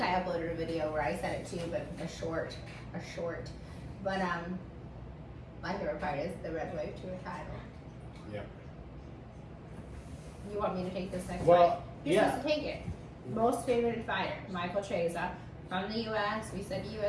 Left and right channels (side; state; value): both; identical; correlation 1.00